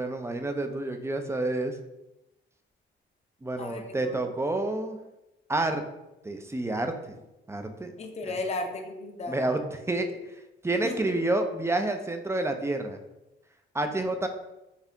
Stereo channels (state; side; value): normal; both; correlation 0.65